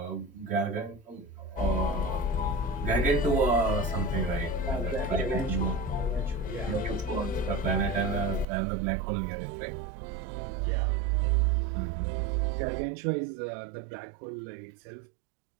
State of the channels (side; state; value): left; drops out; at 8.5 s